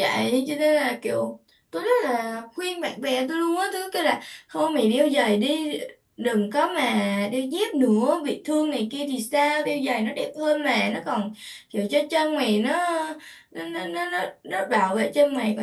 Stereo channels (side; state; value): both; identical; correlation 1.00